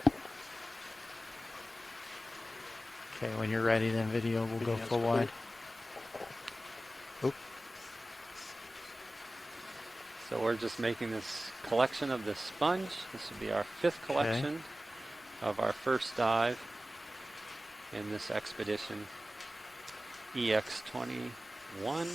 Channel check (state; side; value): normal; both; correlation 0.95